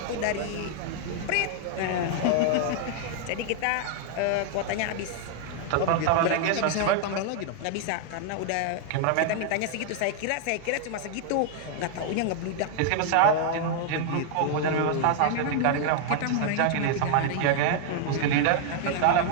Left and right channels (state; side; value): different; both; correlation 0.00